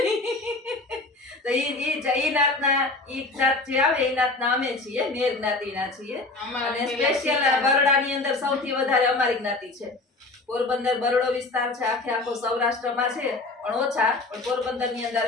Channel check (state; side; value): quieter; right; 3.2 dB